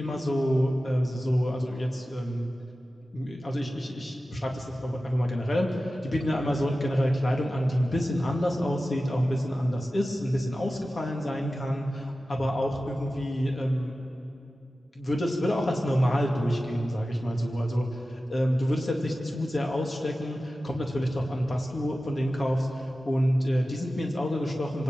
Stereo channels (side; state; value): both; normal; correlation 0.95